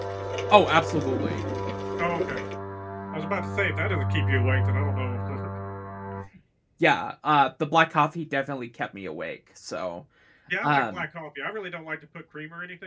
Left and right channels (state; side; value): identical; both; correlation 1.00